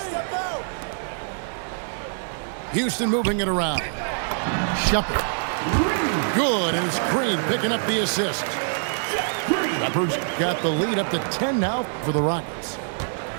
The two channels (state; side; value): silent; left; digital silence